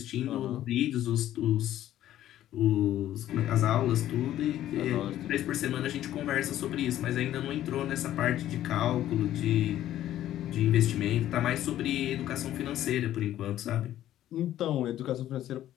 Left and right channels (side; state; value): right; quieter; 12.7 dB